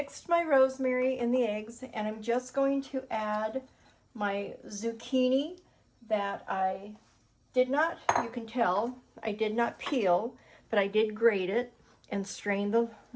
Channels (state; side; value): identical; both; correlation 1.00